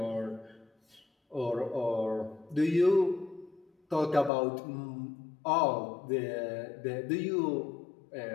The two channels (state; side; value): drops out; right; at 4.3 s